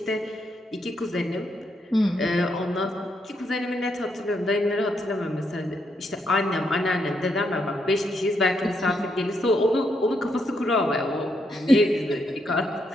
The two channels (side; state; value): both; normal; correlation 0.78